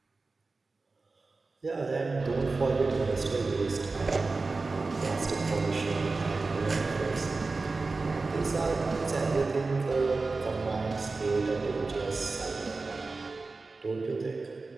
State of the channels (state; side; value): quieter; left; 3.8 dB